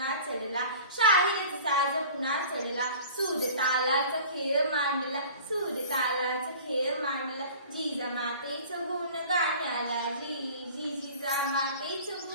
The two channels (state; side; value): inverted; both; correlation -0.43